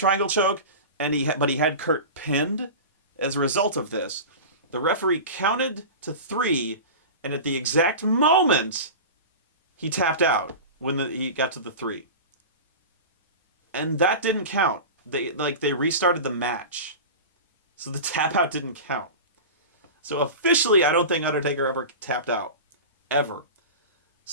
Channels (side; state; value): both; inverted; correlation -0.30